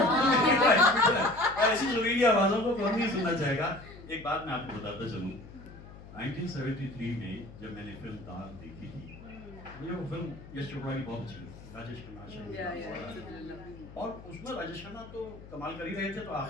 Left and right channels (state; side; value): noise; left; hum, 17 dB below the sound